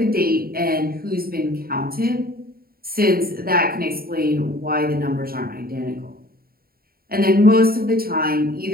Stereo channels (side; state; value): left; late; 0.43 ms